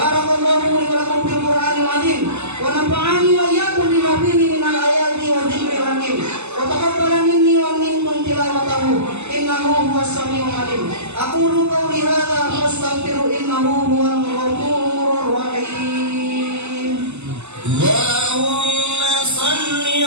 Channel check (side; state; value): left; late; 0.82 ms